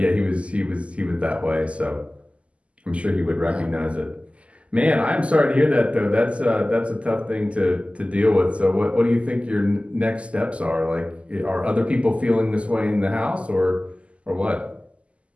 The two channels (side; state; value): left; late; 0.060 ms